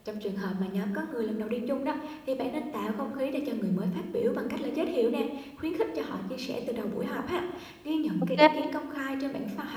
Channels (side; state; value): both; identical; correlation 1.00